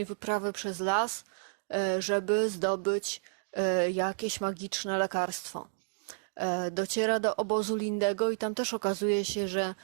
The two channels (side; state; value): left; silent; digital silence